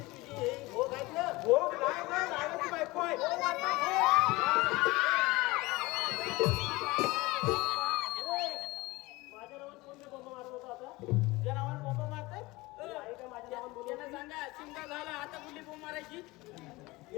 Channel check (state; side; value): quieter; right; 21.6 dB